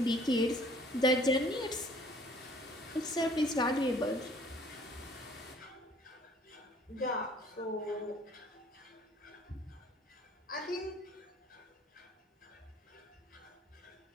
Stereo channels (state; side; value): normal; both; correlation 0.56